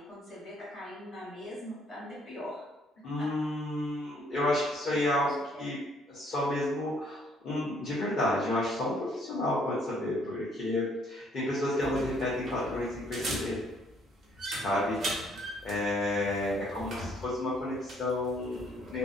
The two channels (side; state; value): both; normal; correlation 0.65